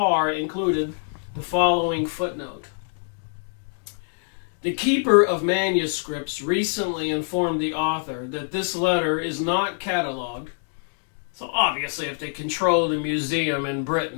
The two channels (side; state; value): right; silent; digital silence